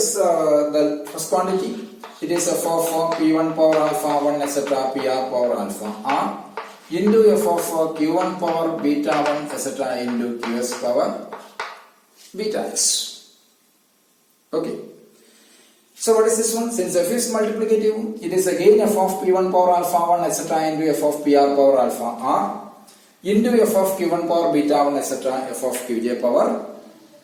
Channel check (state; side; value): identical; both; correlation 1.00